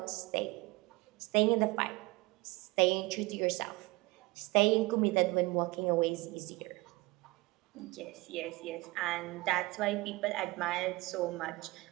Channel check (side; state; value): left; quieter; 22.3 dB